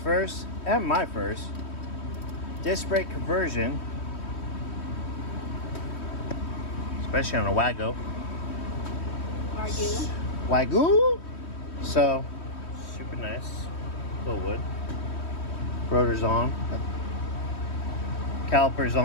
and my first disc brake conversion, especially on a Wago. Wagyu. So super nice. Wilwood. Rotor's on. Caliper's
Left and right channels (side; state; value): right; late; 3.1 ms